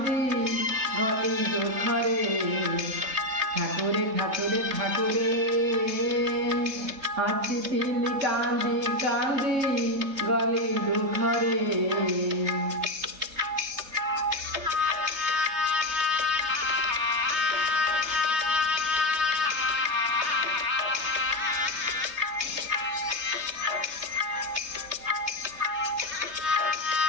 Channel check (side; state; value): left; late; 3.3 ms